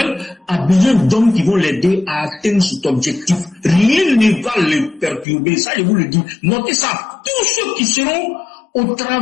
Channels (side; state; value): right; drops out; at 5.2 s